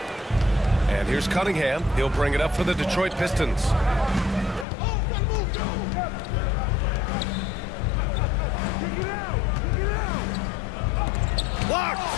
And here's Cunningham. He'll bring it up for the Detroit Pistons. Blocked!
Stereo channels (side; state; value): right; drops out; at 4.7 s